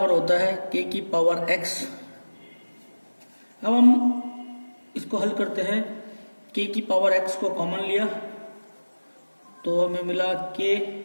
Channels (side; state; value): both; inverted; correlation -1.00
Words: होता है k की पावर x। अब हम इसको हल करते हैं। k की पावर x को कॉमन लिया तो हमें मिला k